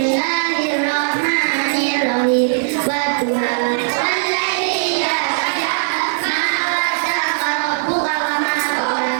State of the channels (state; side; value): silent; left; digital silence